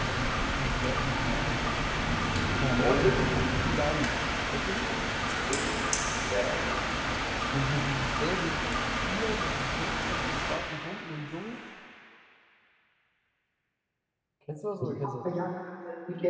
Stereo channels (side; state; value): both; identical; correlation 1.00